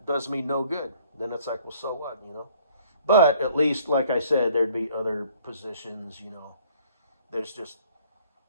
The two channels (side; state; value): both; inverted; correlation -0.59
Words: does me no good. Then it's like, well, so what, But at least, like I said, there'd be other positions, There's just,